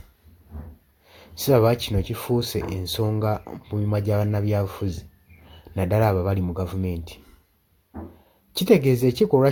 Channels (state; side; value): identical; both; correlation 1.00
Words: Siraba kino kifuuse ensonga mu mimwa gya bannabyabufuzi naddala abo abali mu gavumenti. Kitegeeza